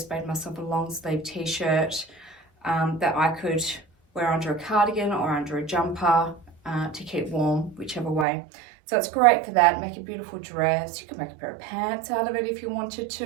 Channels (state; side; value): drops out; left; at 8.2 s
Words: made myself a long sleeve t-shirt that I could wear under a cardigan or under a jumper to keep warm, whichever way. So it's great for that. Make a beautiful dress. You can make a pair of pants out of it if you wanted